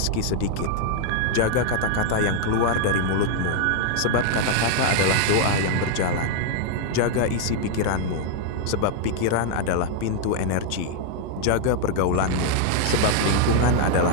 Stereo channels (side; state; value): both; different; correlation 0.00